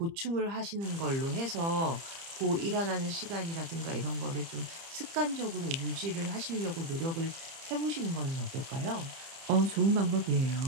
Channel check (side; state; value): left; late; 30 ms